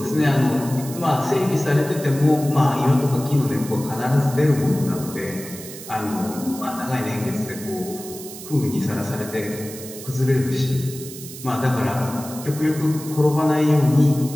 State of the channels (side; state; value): right; noise; hiss, 13 dB below the sound